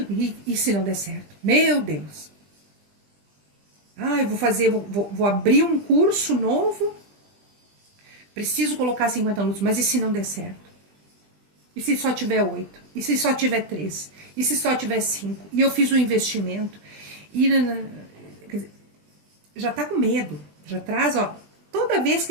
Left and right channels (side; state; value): left; late; 20 ms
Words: e se não der certo? Meu Deus! Eu vou abrir um curso novo, preciso colocar 50 alunos, mas e se não der certo? E se só tiver 8? E se só tiver 3? E se só tiver 5? E eu fiz um investimento, e já está com medo, já traz, toda vez